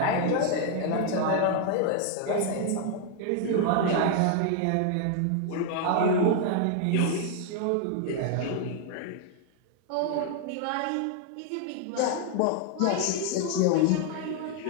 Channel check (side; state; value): both; different; correlation 0.00